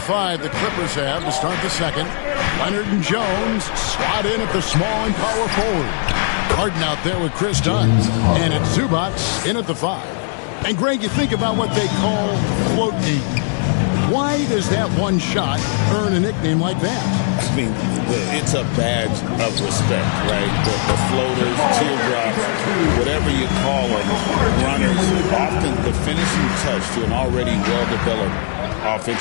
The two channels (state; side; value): silent; right; 67 dB below the other